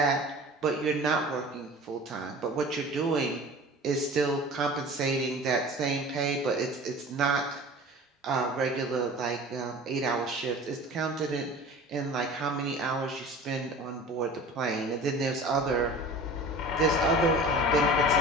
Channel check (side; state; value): both; normal; correlation 0.39